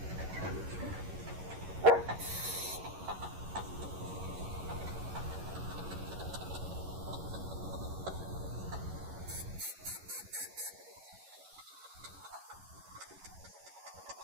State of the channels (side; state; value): left; late; 11 ms